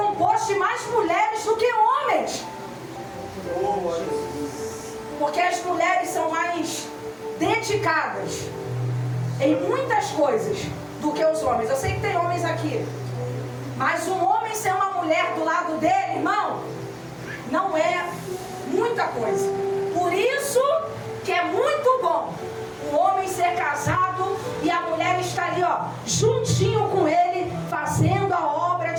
de mais mulheres do que homens. Porque as mulheres são mais dedicadas em muitas coisas do que os homens. Eu sei que tem homens aqui, mas um homem ser uma mulher do lado dele, irmão, não é muita coisa. Por isso que é muito bom o homem ser casado e a mulher estar ali, ó, juntinho com ele, fazendo a obra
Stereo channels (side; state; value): both; identical; correlation 1.00